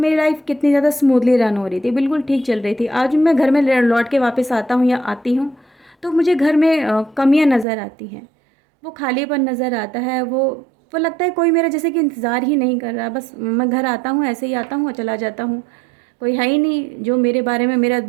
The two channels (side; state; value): left; drops out; at 7.7 s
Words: लाइफ कितनी ज़्यादा स्मूथली रन हो रही थी, बिल्कुल ठीक चल रही थी। आज मैं घर में लौट के वापस आता हूँ या आती हूँ तो मुझे घर में कमियाँ नज़र आती हैं, वो खालीपन नज़र आता है, वो लगता है कोई मेरा जैसे कि इंतज़ार ही नहीं कर रहा। बस मैं घर आता हूँ, ऐसे ही आता हूँ और चला जाता हूँ, कोई है ही नहीं जो मेरे बारे में मेरा